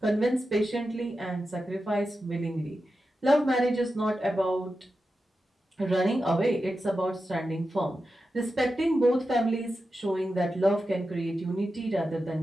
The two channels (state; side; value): normal; both; correlation 0.91